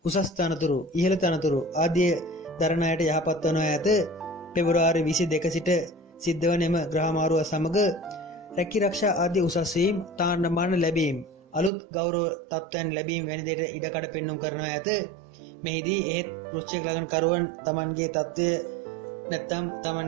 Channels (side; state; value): left; drops out; at 11.7 s